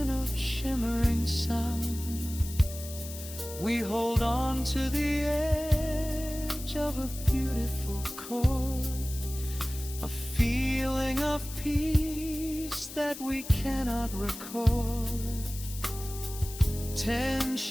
of shimmering sound. We hold on to the edge of a beautiful chord, a feeling of peace that we cannot record.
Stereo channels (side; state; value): left; noise; hiss, 12 dB below the sound